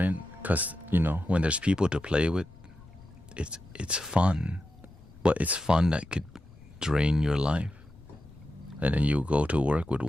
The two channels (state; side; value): noise; left; rumble, 23 dB below the sound